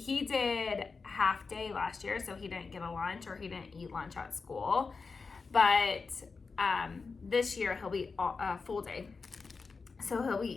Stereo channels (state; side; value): quieter; right; 4.6 dB